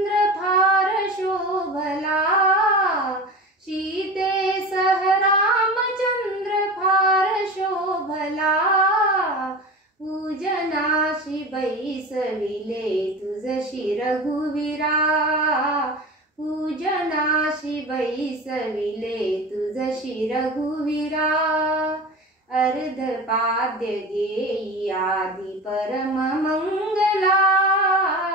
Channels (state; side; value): normal; both; correlation 0.31